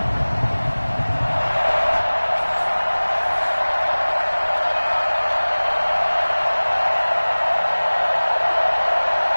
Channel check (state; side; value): inverted; both; correlation -1.00